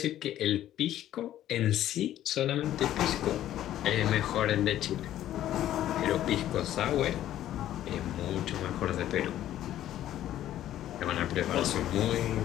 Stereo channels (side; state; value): right; quieter; 12.5 dB